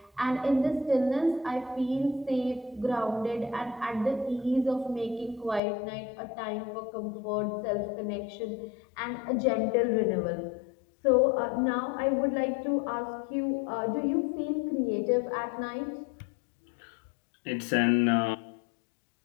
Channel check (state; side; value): drops out; right; at 5.6 s